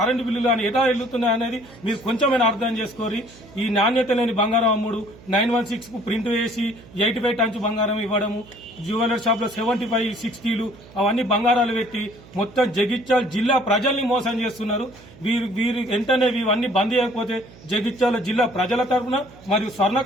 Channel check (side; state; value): right; noise; hum, 22 dB below the sound